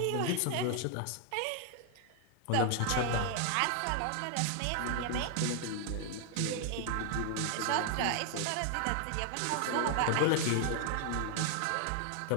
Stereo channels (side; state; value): both; different; correlation 0.00